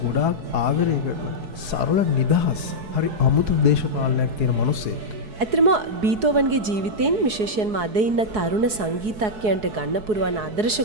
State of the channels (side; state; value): left; late; 4.7 ms